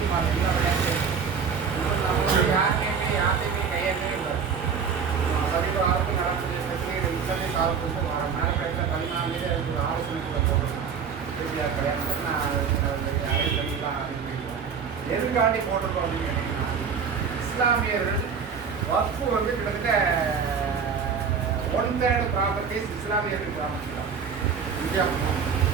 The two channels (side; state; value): left; quieter; 6.3 dB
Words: எல்லா விளையாட்டு நம்மளுடைய யார்ட்டையுமே கையெழுத்தே இல்லை. சமீப காலத்தில் நடக்கூடிய பிரச்சனைகள் இத்தனை சால்வ் மேலக்கடையில் 14 அதுக்கு ஒரு ஆலோசனைக்குள்ள போகணும். இறுதியாக கல்யாணம் நான் அரைப்படிலாம் ஆரம்பிக்கிறேன். எதுக்காண்டி போட்டிருக்கோம் அப்படின்னு கேட்டிங்கன்னா, இஸ்லாமியர்கள் வக்ஃபு வந்து கிட்டத்தட்ட 1/3 ப்ராப்பர்ட்டிஸ் இஸ்லாமியர்கள் ப்ராப்பர்ட்டி தான். இந்தியா